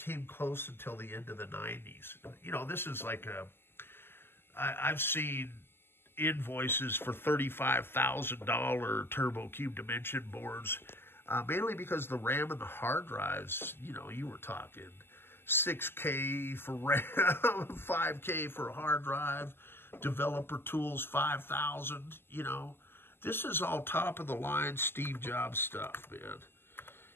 close until the end of the 90s. You know, this is like I've seen invoices for $35,000 Turbo Cube dimension boards, mainly because the RAM and the hard drives, you know, you were talking 6K for RAM, 5K for a hard drive, developer tools 5,000, you know, This is all top-of-the-line Steve Jobs stuff, man.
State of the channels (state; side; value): late; right; 0.11 ms